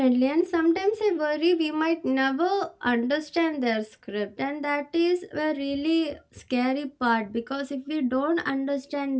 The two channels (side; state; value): both; identical; correlation 1.00